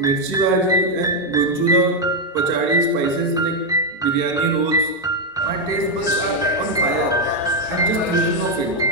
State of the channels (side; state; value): both; normal; correlation 0.02